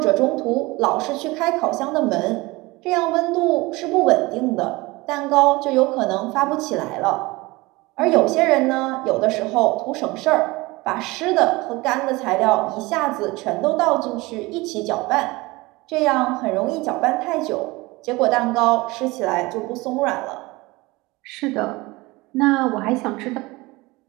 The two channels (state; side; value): quieter; left; 22.3 dB